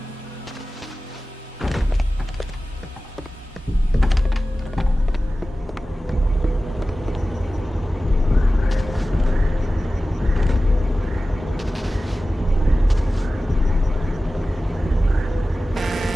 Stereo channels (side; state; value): both; normal; correlation 0.96